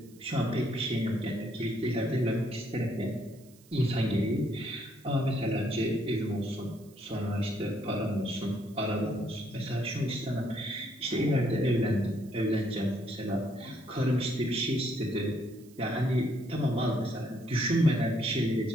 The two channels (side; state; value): right; noise; hiss, 27 dB below the sound